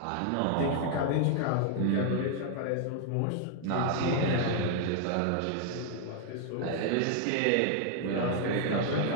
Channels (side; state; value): both; different; correlation 0.00